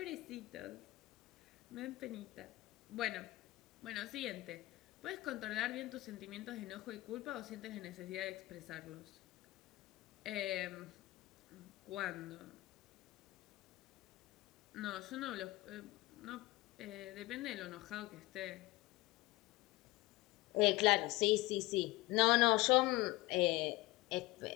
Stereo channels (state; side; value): quieter; right; 19.9 dB